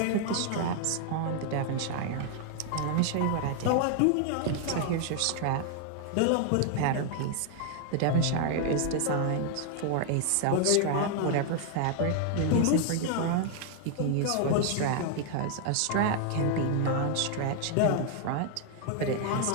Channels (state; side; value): different; both; correlation 0.00